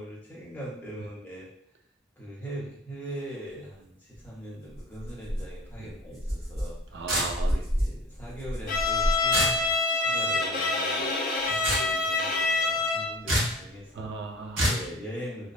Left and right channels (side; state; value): both; normal; correlation 0.42